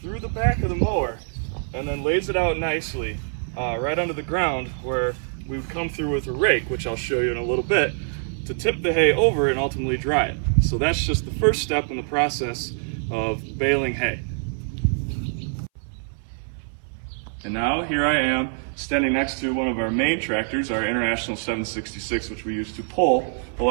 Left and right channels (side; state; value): left; silent; 60 dB below the other